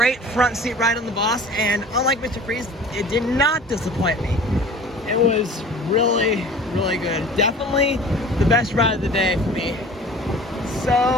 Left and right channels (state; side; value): normal; both; correlation 0.43